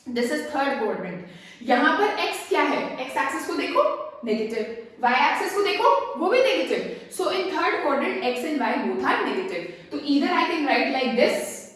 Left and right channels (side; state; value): both; identical; correlation 1.00